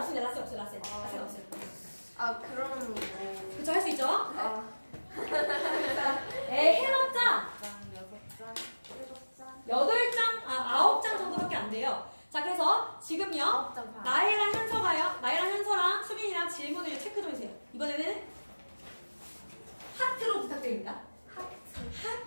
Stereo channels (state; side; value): inverted; both; correlation -1.00